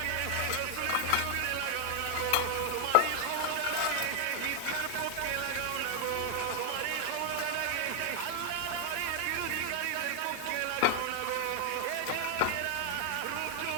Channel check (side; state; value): both; different; correlation 0.00